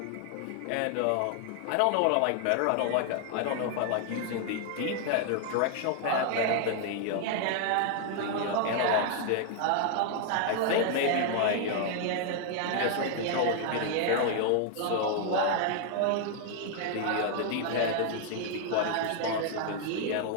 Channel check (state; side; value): different; both; correlation 0.00